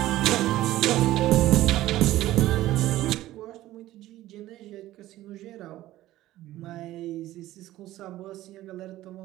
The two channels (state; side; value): quieter; left; 15.3 dB